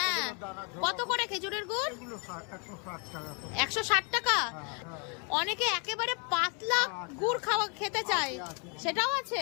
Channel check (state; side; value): quieter; right; 35.8 dB